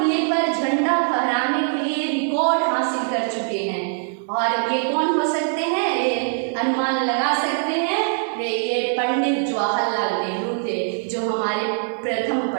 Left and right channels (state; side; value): silent; left; digital silence